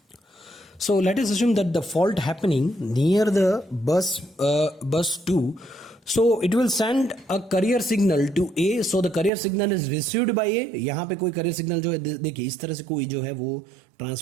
So let us assume that the fault happening near the bus 2. So it will send a carrier signal to A. So the carrier signal is received by A. यहाँ पे कोई carrier signal जो है देखिए इस तरह से कोई जो है वो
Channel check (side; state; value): left; drops out; at 9.3 s